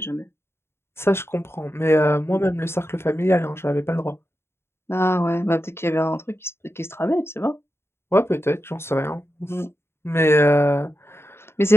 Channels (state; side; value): late; right; 0.12 ms